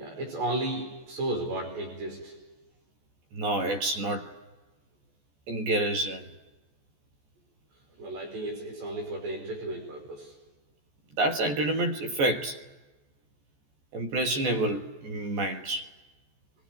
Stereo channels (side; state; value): left; late; 14 ms